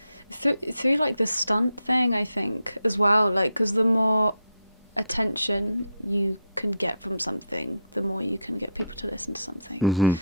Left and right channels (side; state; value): both; inverted; correlation -0.72